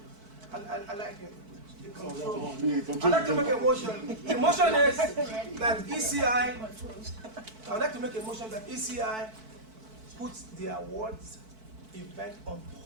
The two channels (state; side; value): late; left; 4.5 ms